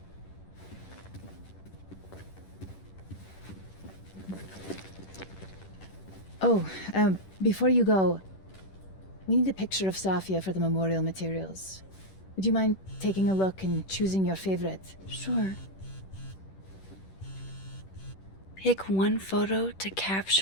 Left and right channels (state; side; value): late; right; 10 ms